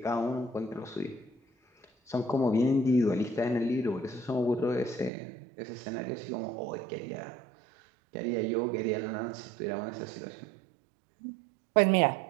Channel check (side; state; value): left; drops out; at 5.1 s